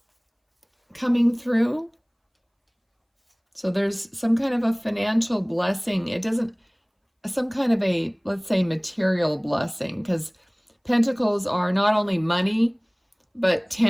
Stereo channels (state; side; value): identical; both; correlation 1.00